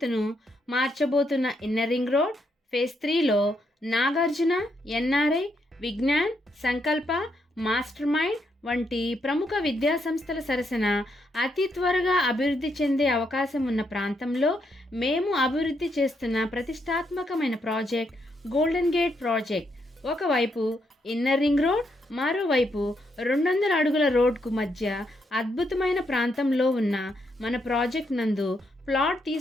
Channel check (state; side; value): normal; both; correlation 0.78